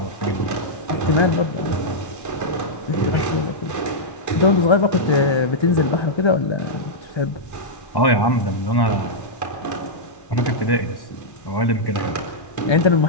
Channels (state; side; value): late; right; 1.1 ms